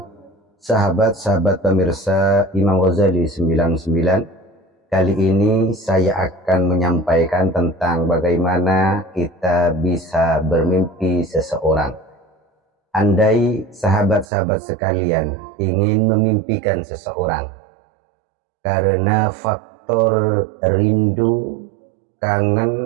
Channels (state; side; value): drops out; left; at 14.2 s